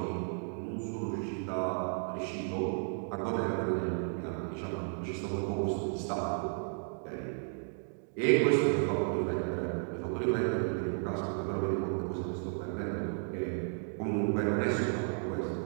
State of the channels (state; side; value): silent; left; 55 dB below the other